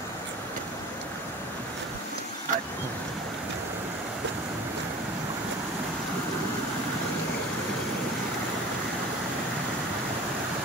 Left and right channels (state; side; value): normal; both; correlation 0.40